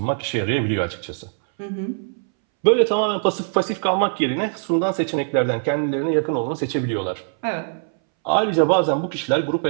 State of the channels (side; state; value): left; silent; 63 dB below the other